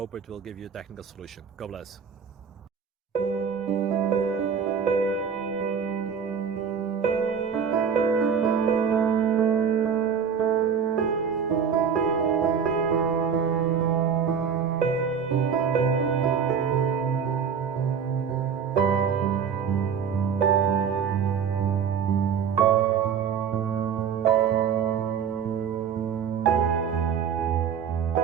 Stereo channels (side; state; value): left; quieter; 7.1 dB